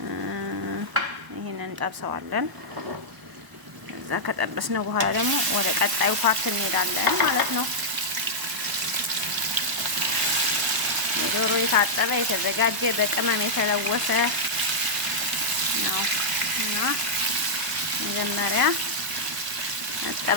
ይሄንን እንጠብሰዋለን። እዛ ከጠበስነው በኋላ ደግሞ ወደ ቀጣዩ ፓርት እንሄዳለን ማለት ነው። ዶሮ የታጠበ የተዘጋጀ በቅመም የተለወሰ ነው እና መጀመሪያ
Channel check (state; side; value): late; left; 1.0 ms